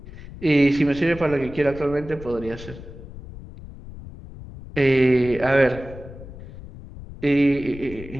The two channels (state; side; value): noise; left; rumble, 14 dB below the sound